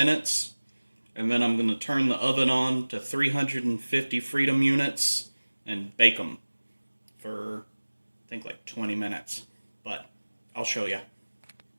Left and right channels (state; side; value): inverted; both; correlation -1.00